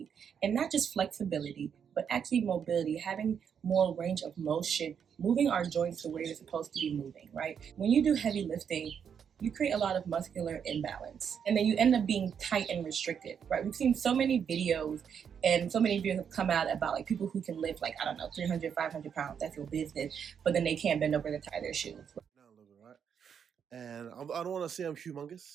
And not just flexibility, but actually mobility, having more range of motion, moving our joints to where you're supposed to be moving, right? When you do heavy lifting, you create a lot of muscular imbalance, and then you end up being tight and restricted, right? We've seen so many videos, and so many videos have come out about like people who can lift like, I don't know, 300, 500 pounds, that's your business, but then they can't bend over to tie their shoes. And I don't want to say I'm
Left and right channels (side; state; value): left; quieter; 7.5 dB